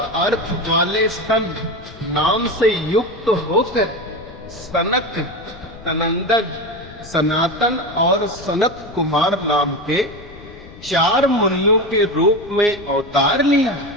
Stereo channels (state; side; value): noise; left; rumble, 18 dB below the sound